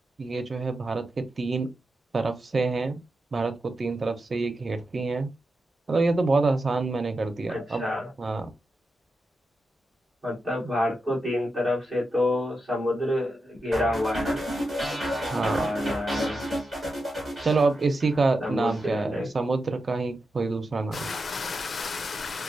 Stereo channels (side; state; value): both; normal; correlation 0.88